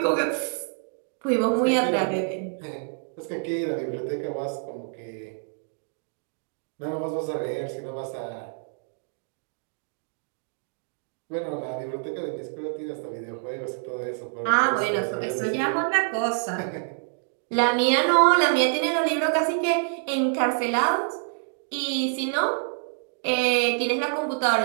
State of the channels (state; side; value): silent; left; digital silence